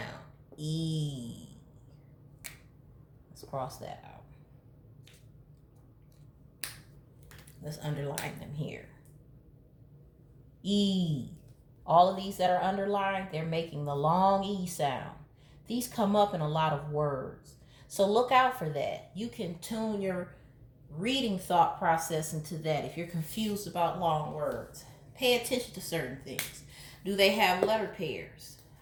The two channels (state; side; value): identical; both; correlation 1.00